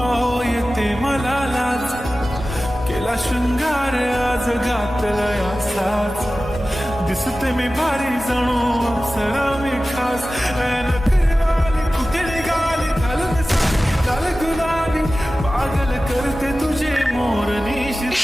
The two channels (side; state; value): both; normal; correlation 0.96